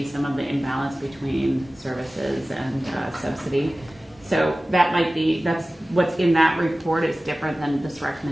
some of the imbalance between services and subsidy. So that's what's in that report is different than this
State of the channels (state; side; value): normal; both; correlation 0.97